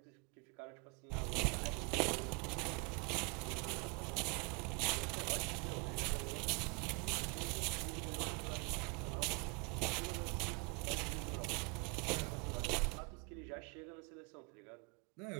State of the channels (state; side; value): quieter; left; 30.7 dB